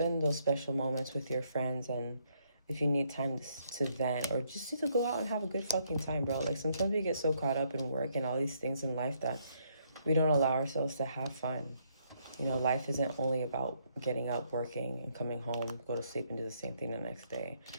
special moments with your friends, and if you need time to vent or just to go out and have a good fucking time, bro. Like, sometimes we get so caught up in work and all these things in life that we don't allow ourselves to have fun. You know, life isn't only about getting up, working, and coming home, go to sleep, and do the same thing the next day.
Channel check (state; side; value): inverted; both; correlation -0.72